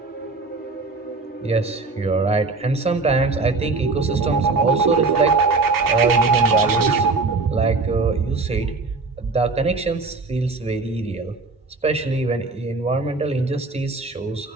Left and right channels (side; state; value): left; quieter; 3.8 dB